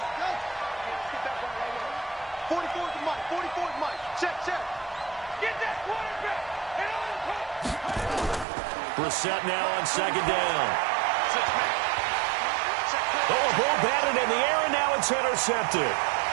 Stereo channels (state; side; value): drops out; left; at 8.5 s